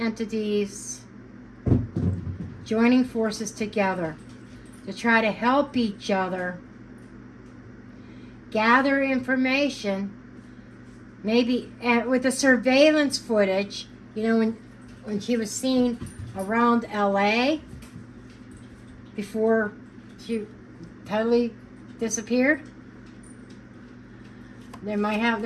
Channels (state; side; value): identical; both; correlation 1.00